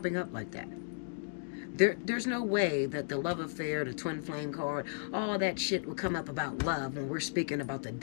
up like that. There's no way that the love affair, the twin flame card, all that shit would come up about love when we're speaking about the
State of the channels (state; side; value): silent; right; digital silence